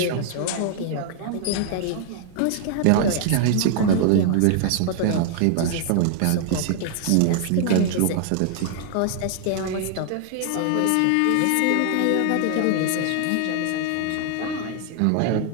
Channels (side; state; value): both; different; correlation 0.00